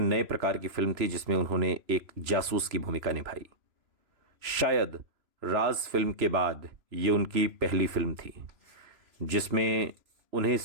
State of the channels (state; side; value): late; left; 3.0 ms